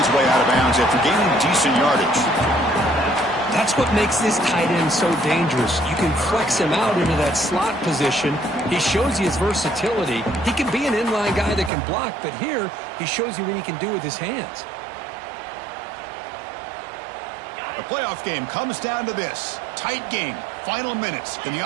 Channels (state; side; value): drops out; left; at 11.7 s